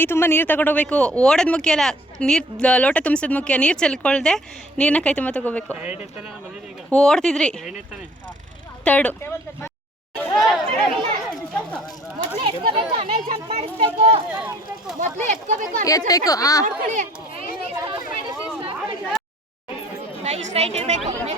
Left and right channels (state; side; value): normal; both; correlation 0.55